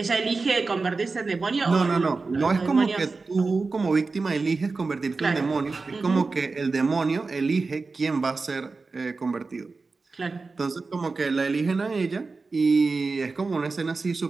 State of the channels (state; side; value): quieter; left; 4.0 dB